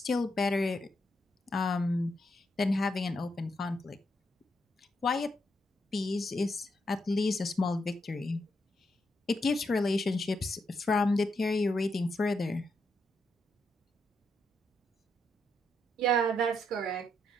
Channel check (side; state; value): both; normal; correlation 0.80